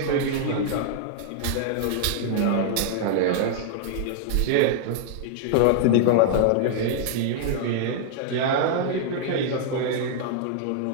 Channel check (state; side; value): different; both; correlation -0.01